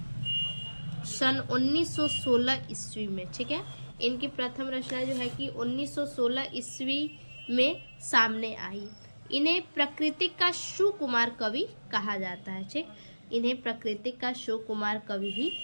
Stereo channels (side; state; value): both; inverted; correlation -1.00